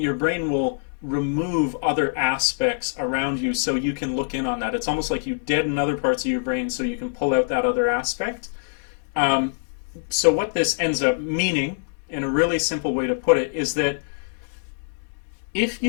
brain will remove other aspects around you so you can look in on that. It's almost like you deaden other parts of your brain so you can pull out that other aspect. So what this ends up meaning, in a really simple way to put it, is that if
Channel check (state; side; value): silent; right; digital silence